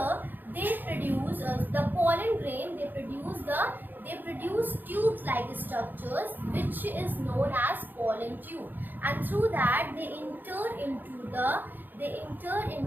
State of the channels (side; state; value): left; late; 0.089 ms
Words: they produce the pollen grain, they produce tube like structures which is known as pollen tube, and through that they